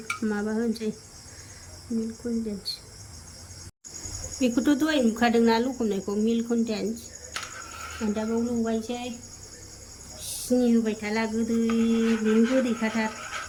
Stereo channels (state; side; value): identical; both; correlation 1.00